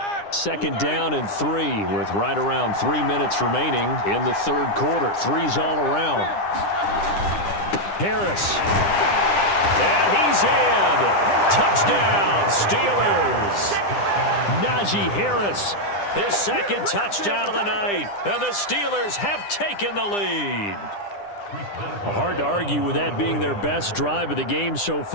Second down and 3 with right around 3 minutes remaining in the third quarter. Threes all around. Harris. And he's in. Touchdown, Steelers. Najee Harris. His second touchdown of the night, and the Steelers have taken the lead. Hard to argue with that being their best drive of the game so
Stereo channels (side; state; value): right; late; 9.9 ms